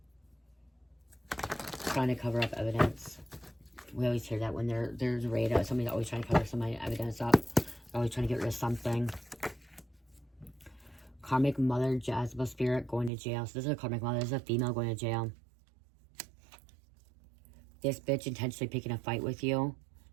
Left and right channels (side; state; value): left; drops out; at 13.1 s